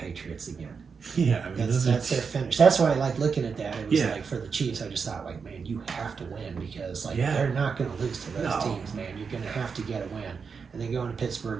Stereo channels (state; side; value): quieter; left; 5.6 dB